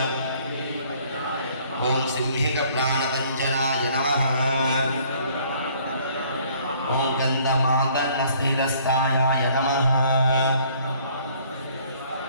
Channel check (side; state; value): both; inverted; correlation -0.59